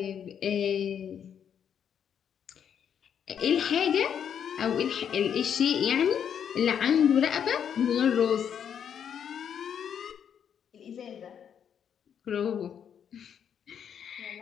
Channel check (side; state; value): right; quieter; 8.3 dB